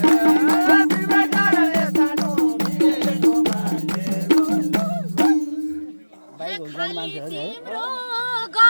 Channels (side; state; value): both; inverted; correlation -1.00